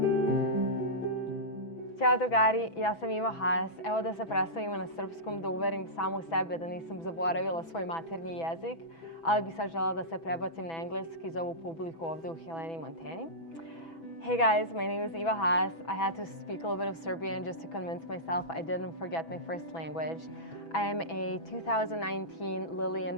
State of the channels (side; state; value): right; late; 6.1 ms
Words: Ćao drugari, ja sam Iva Haas. Evo da se predstavimo na srpskom, da uverim samu sebe da nisam zaboravila svoj maternji jezik, ali bi sad žela da se prebacim na engleski za ovu publiku ovde u Heleni, Montani. Hey guys, my name is Iva Haas. I had to speak a little bit of Serbian just to convince myself I didn't forget my first language. I am a 2019 Lillian